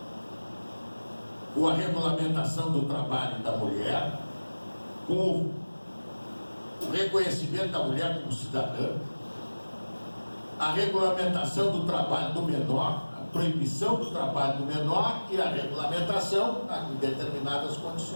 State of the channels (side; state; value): both; inverted; correlation -1.00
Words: com a regulamentação do trabalho da mulher, com o reconhecimento da mulher como cidadã, a regulamentação do trabalho do menor, a proibição do trabalho do menor e a regulamentação em determinadas